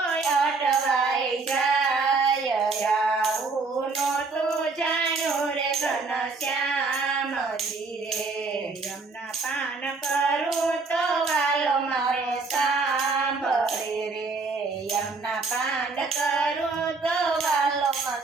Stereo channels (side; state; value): left; quieter; 4.1 dB